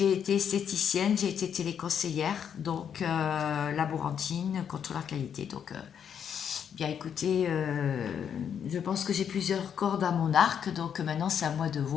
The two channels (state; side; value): quieter; right; 8.1 dB